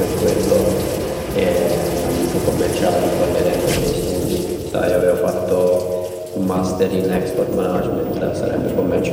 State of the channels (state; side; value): identical; both; correlation 1.00